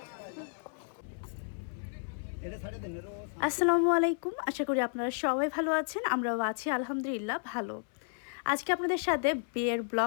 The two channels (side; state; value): right; silent; 56 dB below the other